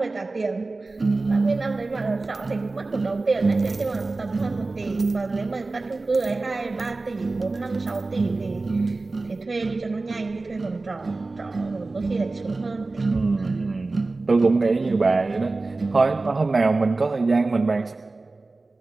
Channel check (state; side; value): quieter; left; 3.4 dB